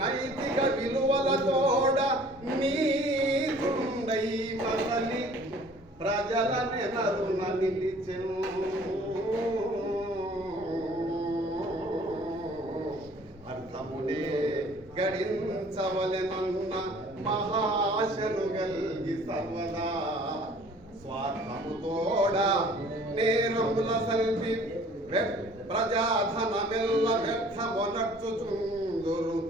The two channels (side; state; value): both; normal; correlation 0.52